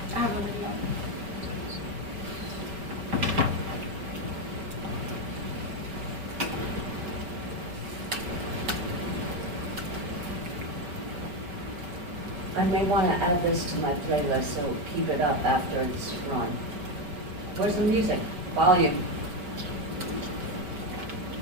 I have a video. I may want to add this to my playlist, so keep it up after it's run. Where's the music? Volume.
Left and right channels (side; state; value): left; late; 5.7 ms